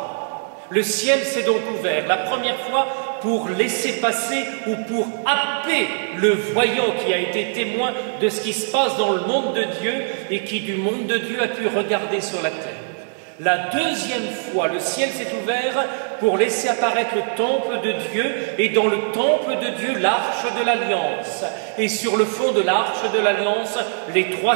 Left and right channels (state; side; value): silent; left; digital silence